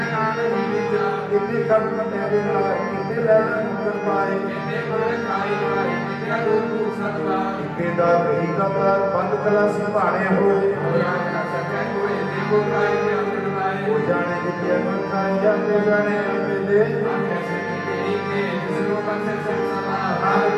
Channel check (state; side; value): identical; both; correlation 1.00